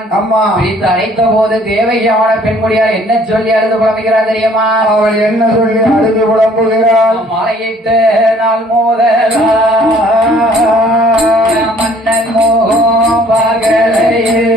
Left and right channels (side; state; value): both; normal; correlation 0.57